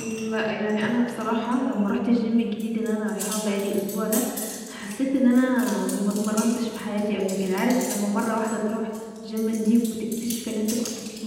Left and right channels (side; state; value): both; identical; correlation 1.00